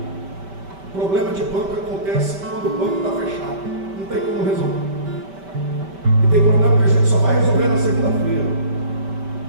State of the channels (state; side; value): late; left; 5.1 ms